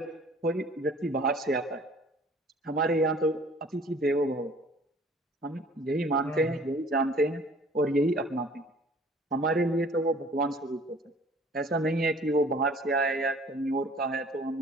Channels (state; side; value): normal; both; correlation 0.52